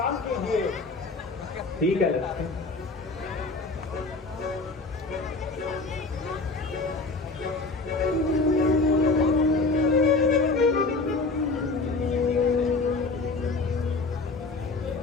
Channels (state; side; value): quieter; right; 3.6 dB